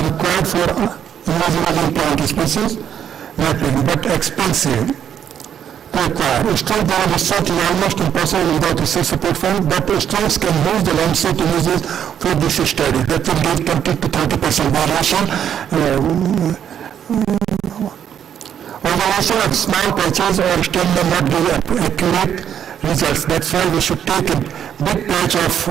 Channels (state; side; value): quieter; left; 9.2 dB